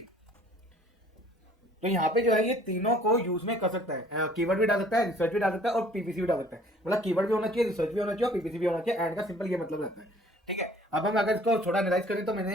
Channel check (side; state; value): both; normal; correlation 0.54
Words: तो यहाँ पे जो है ये तीनों को यूज में कर सकता है, कीवर्ड भी डाल सकता है, रिसर्च भी डाल सकता है और पीपीसी भी डाल सकता है। मतलब कीवर्ड भी होना चाहिए, रिसर्च भी होना चाहिए और पीपीसी भी होना चाहिए। एंड का सिंपल ये मतलब रहता है, ठीक है। अब हम अगर इसको थोड़ा एनालाइज करें तो